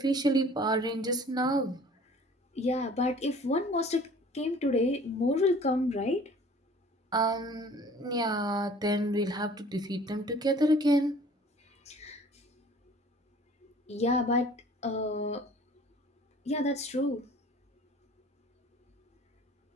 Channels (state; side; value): normal; both; correlation 0.50